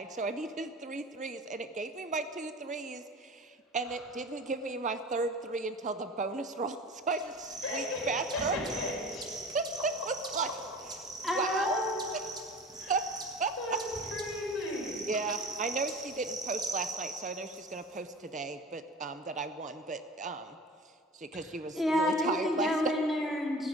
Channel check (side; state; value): both; normal; correlation 0.38